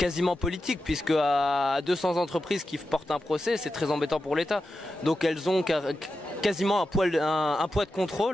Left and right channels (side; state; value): both; normal; correlation 0.90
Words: politique, puisque à 200 entreprises qui portent un procès, c'est très embêtant pour l'État. Donc elles ont quasiment un poids de